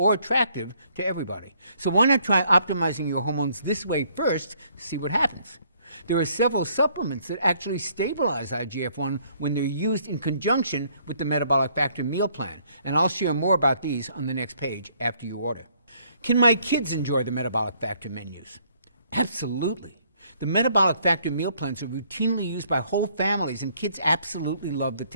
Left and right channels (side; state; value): both; inverted; correlation -0.65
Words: attractive to everybody. So why not try optimizing your hormones this way first to see what happens? There are several supplements that actually stabilize IGF-1 when they're used in conjunction with the Metabolic Factor meal plan. And I'll share more about these on the next page after you order. Can my kids enjoy the Metabolic Factor menus? Absolutely. The Metabolic Factor meal plans are routinely used by whole families, and kids absolutely love the